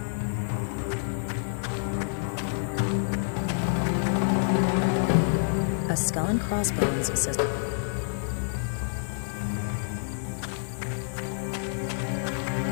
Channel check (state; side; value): silent; right; 59 dB below the other